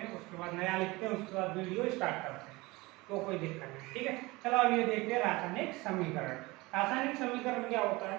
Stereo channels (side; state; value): left; quieter; 22.5 dB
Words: हैं, उसके बाद नया लिखते हैं, उसके बाद वीडियो स्टार्ट करते हैं, तो कोई दिक्कत नहीं। ठीक है, चलो अब ये देखते हैं रासायनिक समीकरण। रासायनिक समीकरण क्या होता है,